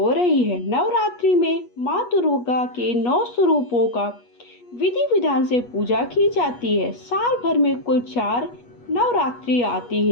रही है। नवरात्रि में मां दुर्गा के 9 स्वरूपों का विधि विधान से पूजा की जाती है। साल भर में कुल 4 नवरात्रि आती है,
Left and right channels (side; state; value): right; late; 8.3 ms